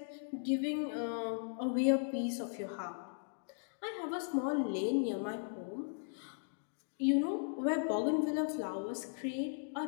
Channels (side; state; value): right; silent; digital silence